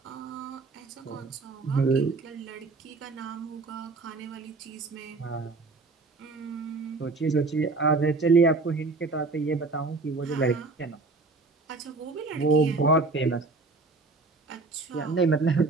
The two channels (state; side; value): quieter; left; 3.7 dB